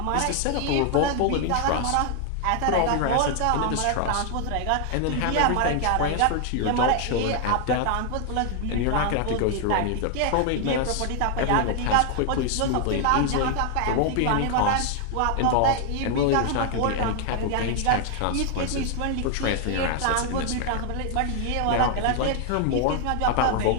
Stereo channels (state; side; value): different; both; correlation 0.00